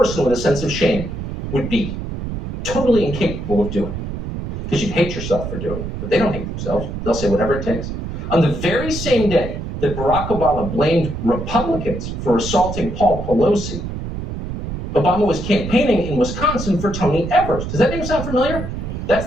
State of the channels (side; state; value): right; noise; rumble, 6 dB below the sound